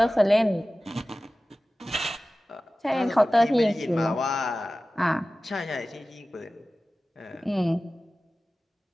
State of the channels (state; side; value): normal; both; correlation 0.96